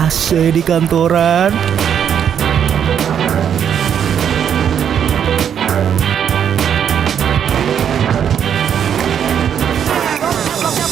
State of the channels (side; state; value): left; quieter; 8.6 dB